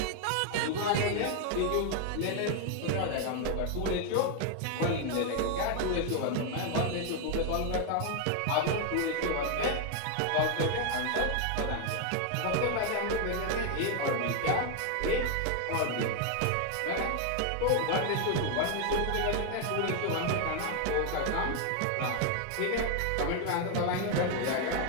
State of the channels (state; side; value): different; both; correlation 0.00